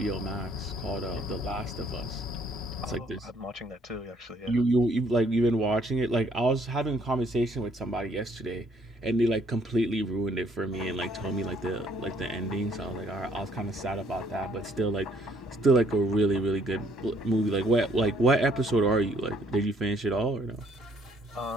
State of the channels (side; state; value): both; normal; correlation 0.65